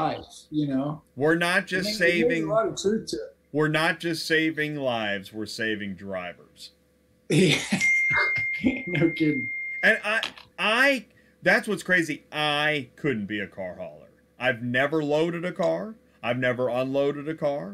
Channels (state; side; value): identical; both; correlation 1.00